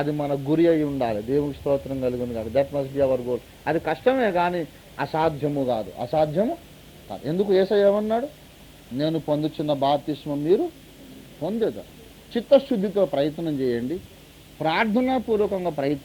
మన గురి అయి ఉండాలి. దేవునికి స్తోత్రం కలుగును కాదు. That must be our goal. అది కష్టమే కానీ అసాధ్యము కాదు, అసాధ్యము కాదు. ఎందుకు యేసయ్య ఏమన్నాడు? నేను పొందుచున్న బాప్తిస్మం మీరు పొందేదా. చిత్తశుద్ధితో ప్రయత్నం చేయండి, ప్రార్థనాపూర్వకంగా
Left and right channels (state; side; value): identical; both; correlation 1.00